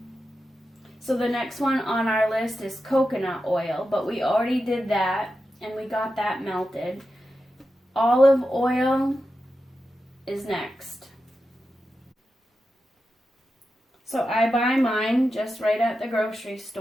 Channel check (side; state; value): both; normal; correlation 0.90